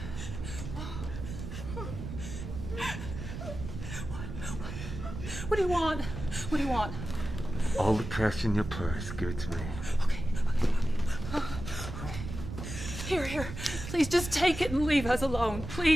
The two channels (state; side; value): noise; right; rumble, 8 dB below the sound